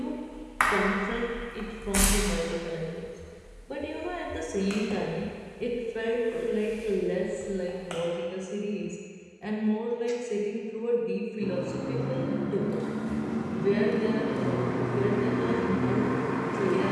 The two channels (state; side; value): identical; both; correlation 1.00